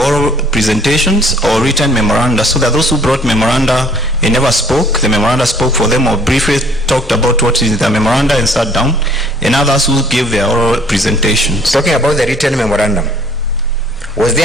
presentations or written memoranda, so that those who brought memoranda and never spoke, the memoranda spoke for them or briefly talked about what is the memoranda and sat down, and others who gave their oral presentations. Talking about the written memorandum, was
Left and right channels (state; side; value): normal; both; correlation 0.58